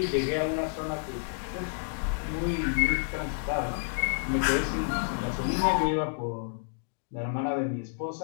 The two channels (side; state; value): right; silent; digital silence